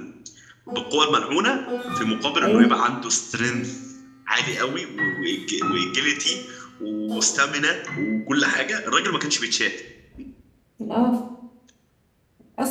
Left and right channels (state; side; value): identical; both; correlation 1.00